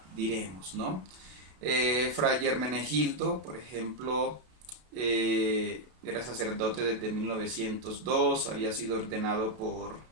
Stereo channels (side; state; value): left; late; 32 ms